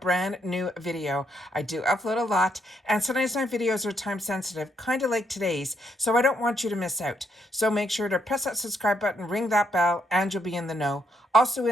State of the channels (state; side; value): normal; both; correlation 0.75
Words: brand new video. I do upload a lot, and sometimes my videos are time sensitive, kind of like today's, so I don't want you to miss out. So make sure to press that subscribe button, ring that bell, and you'll be in the know. Also